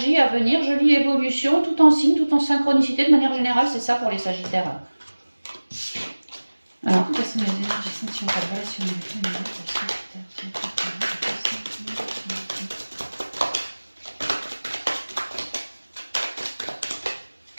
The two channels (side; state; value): both; inverted; correlation -1.00